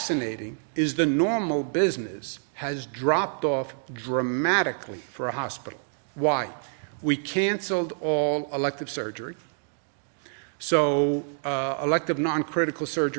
is the normal business has dropped off dramatically for a hospital. Why? We canceled all elective surgery. So elective non-critical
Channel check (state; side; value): silent; left; digital silence